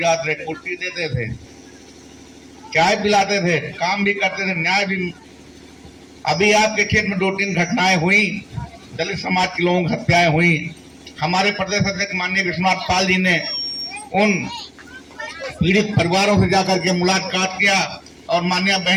थे, कुर्सी देते थे, चाय पिलाते थे, काम भी करते थे, न्याय भी। अभी आपके क्षेत्र में 2-3 घटनाएं हुई, दलित समाज के लोगों की हत्याएं हुई। हमारे प्रदेश अध्यक्ष माननीय विश्वनाथ पाल जी ने उन पीड़ित परिवारों से जाकर के मुलाकात किया और माननीय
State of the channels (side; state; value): both; identical; correlation 1.00